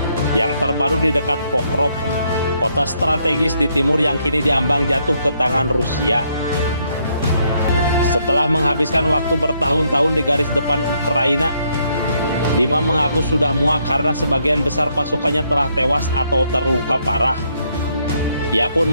Yang terbaru di dekat Pokrov, kota strategis di timur yang kini diambang jatuh ke tangan Rusia. Setelah menghabiskan waktu bertahun-tahun di garis depan Ukraina, Dima mengaku sudah muak karena sebagian besar pasukannya telah tewas atau terluka parah. Ia pun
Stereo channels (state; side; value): inverted; both; correlation -0.73